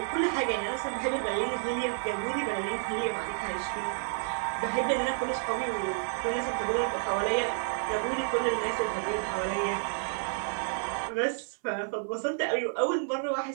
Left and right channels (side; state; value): left; silent; 58 dB below the other